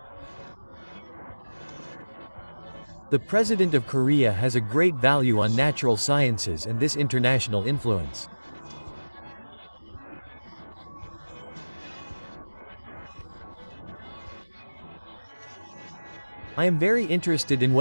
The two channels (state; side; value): inverted; both; correlation -1.00